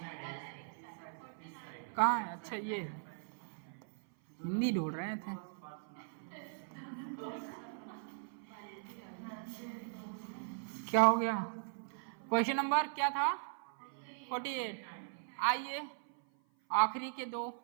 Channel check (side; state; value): left; silent; 52 dB below the other